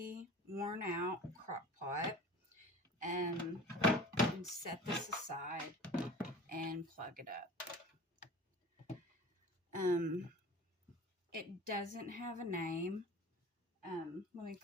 worn out crock pot, and set this aside and plug it up. It doesn't have a name. Let me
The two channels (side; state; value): both; normal; correlation 0.40